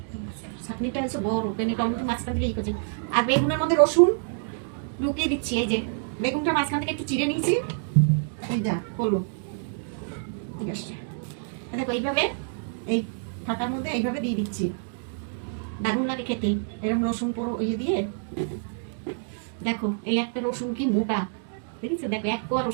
চাটনিটা হচ্ছে বড়, টমেটো মাঝখান থেকে করছি, আর বেগুনের মধ্যে রসুন লুকিয়ে দিচ্ছি। এই যে বেগুনটা মাঝখান থেকে একটু চিড়ে নিয়েছি, এই যা করলো, ঠিক আছে। দেখো এইভাবে এই ফাঁকার মধ্যে এইভাবে দিয়ে দিচ্ছি, দারুণ লাগে খেতে এরকম রসুন পুরো ইয়ে দিয়ে। দেখো এই একটা রসুন কি মোটা, দেখেছো? দেখো এক কোয়া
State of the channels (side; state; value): left; silent; digital silence